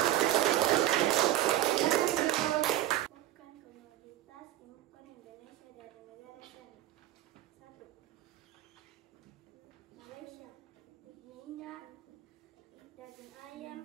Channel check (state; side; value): quieter; left; 14.0 dB